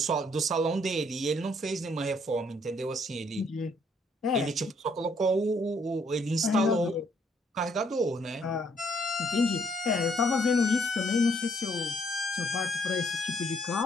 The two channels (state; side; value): normal; both; correlation 0.68